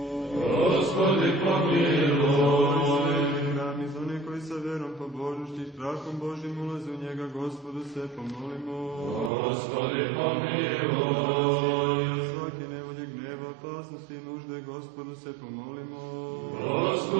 Gospodi pomiluj. Sveti hram i za one koji sa verom, pobožnošću i strahom Božim ulaze u njega, Gospodu se pomolimo. Gospodi pomiluj. Svake nevolje, gneva, opasnosti i nužde, Gospodu se pomolimo.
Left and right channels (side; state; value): left; drops out; at 9.3 s